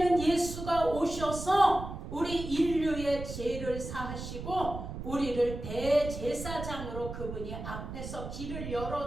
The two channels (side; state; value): right; noise; rumble, 8 dB below the sound